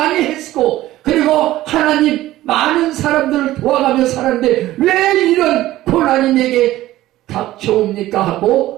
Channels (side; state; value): left; quieter; 15.5 dB